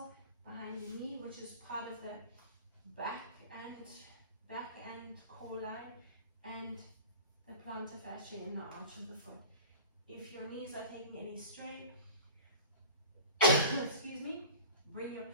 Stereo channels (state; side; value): inverted; both; correlation -0.39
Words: behind the knee, which is part of the back and core line, and the plantar fascia in the arch of the foot. If your knees are taking any strain, excuse me, bring